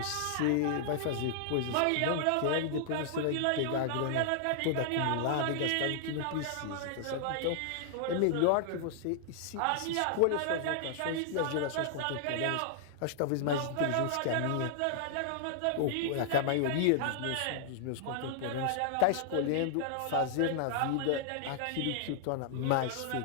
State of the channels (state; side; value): different; both; correlation 0.00